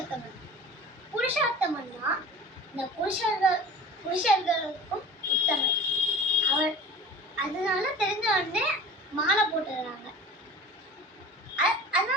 புருஷோத்தமன்னா இந்த புருஷர்களுக்கும் உத்தமன் அவர். அதனால தெரிஞ்ச உடனே மாலை போட்டுடுறாங்க.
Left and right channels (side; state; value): both; normal; correlation 0.39